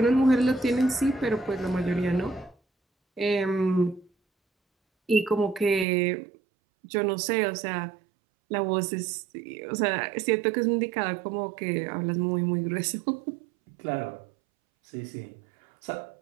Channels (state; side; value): drops out; left; at 5.9 s